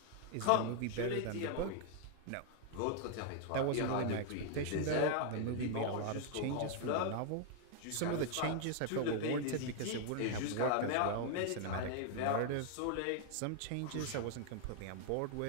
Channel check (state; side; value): different; both; correlation 0.00